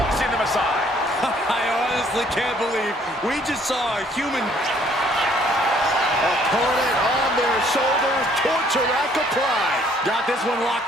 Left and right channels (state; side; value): normal; both; correlation 0.62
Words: them aside. I honestly can't believe we just saw a human... Opponent on their shoulders, torture rack applied. Got this one